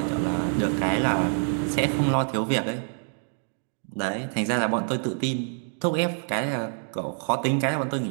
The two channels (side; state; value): left; silent; 61 dB below the other